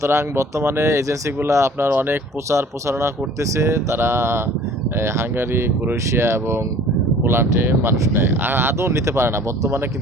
বর্তমানে এজেন্সিগুলো আপনার অনেক প্রচারণা করতেছে। তারা হাঙ্গারি, ক্রোয়েশিয়া এবং পোল্যান্ডে মানুষ নেয়, আর আদৌ নিতে পারে না, বর্তমানে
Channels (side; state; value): both; normal; correlation 0.49